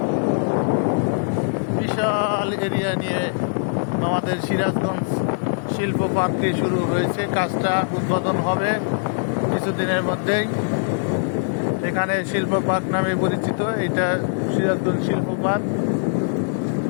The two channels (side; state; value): right; silent; 64 dB below the other